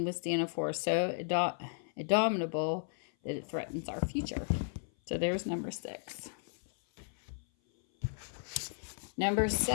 withstand a force so indomitable that it threatens our future? So there's number 6. Number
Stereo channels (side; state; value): right; silent; 55 dB below the other